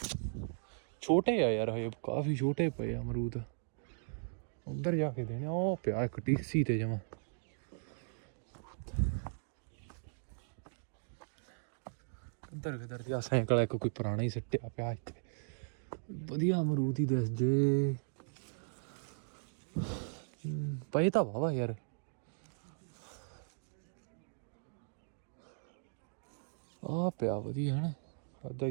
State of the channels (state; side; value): silent; left; digital silence